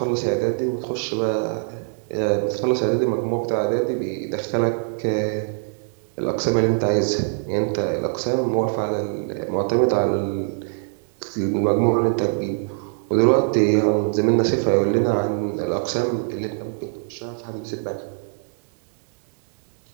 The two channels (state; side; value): silent; left; digital silence